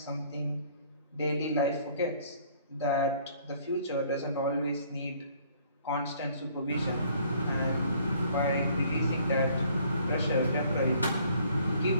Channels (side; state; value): both; inverted; correlation -0.59